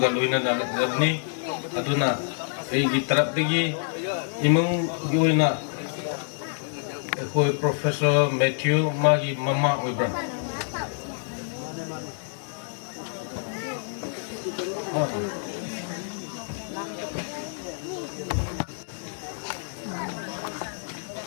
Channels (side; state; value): right; silent; digital silence